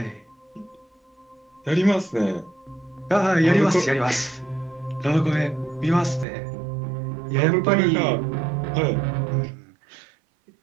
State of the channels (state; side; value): drops out; left; at 6.2 s